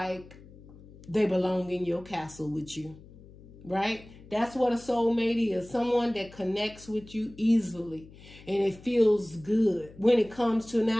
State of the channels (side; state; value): left; noise; hum, 20 dB below the sound